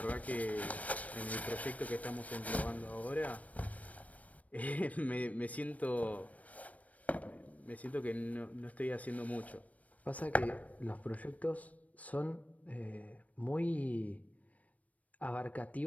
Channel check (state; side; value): late; right; 0.069 ms